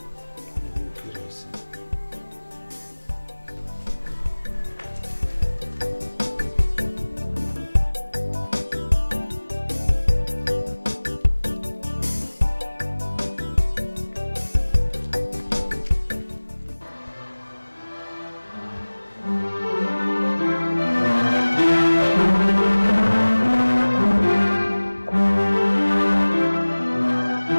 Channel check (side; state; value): both; inverted; correlation -1.00